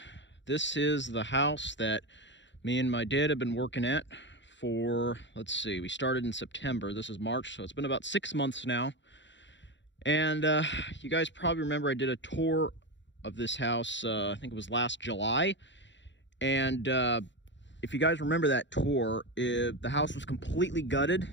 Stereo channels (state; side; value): late; right; 0.53 ms